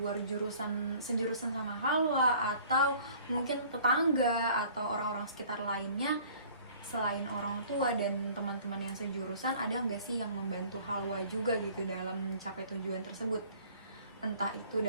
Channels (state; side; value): inverted; both; correlation -0.51